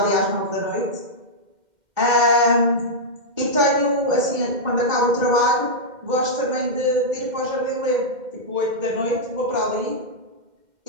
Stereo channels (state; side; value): late; left; 2.1 ms